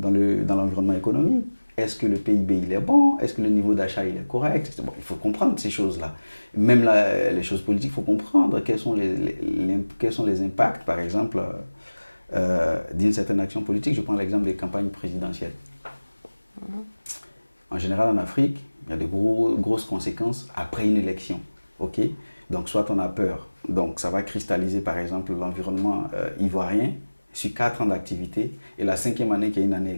l'environnement économique. Est-ce que le PIB il est bon? Est-ce que le niveau d'achat il est correct? Bon, il faut comprendre ces choses-là. Même les choses politiques, il faut comprendre quels sont les impacts, par exemple, d'une certaine action politique. Je prends l'exemple des campagnes présidentielles. En général, en Afrique, il y a de grosses conséquences après une élection. Ok? Donc, soit on a peur. Donc, ça va cristalliser, par exemple, l'environnement ivoirien sur 4 ans d'activité. Et la 5e année, qui est une année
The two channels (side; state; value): both; inverted; correlation -1.00